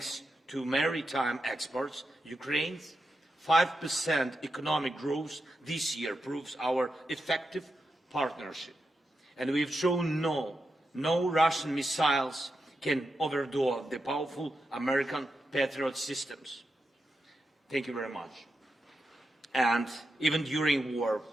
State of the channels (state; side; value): normal; both; correlation 0.87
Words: to maritime exports, Ukraine's 5% economic growth this year proves our effective partnership. And we've shown no Russian missiles can overthrow the powerful American Patriot systems. Thank you very much. And even during war,